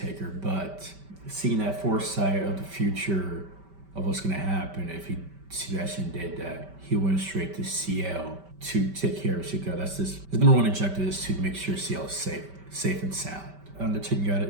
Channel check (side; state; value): left; late; 5.2 ms